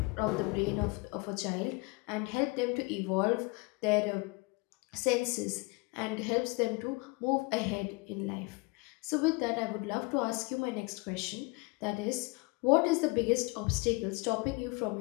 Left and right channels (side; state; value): right; quieter; 27.1 dB